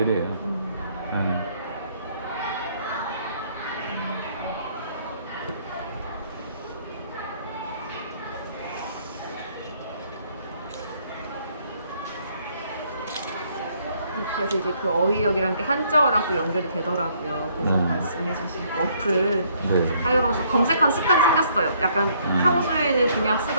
그래서 이제 그 어휘력이란 게 한자어랑 또 연결이 되더라고요. 그래서 말씀해주신 어플 네. 사용하면서 검색한 습관이 생겼어요. 약간 평소에는 그냥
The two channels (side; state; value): both; inverted; correlation -0.66